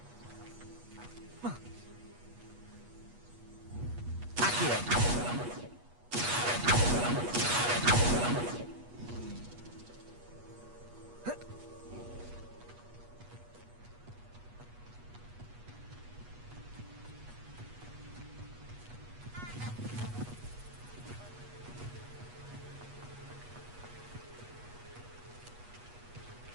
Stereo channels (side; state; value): left; late; 8.3 ms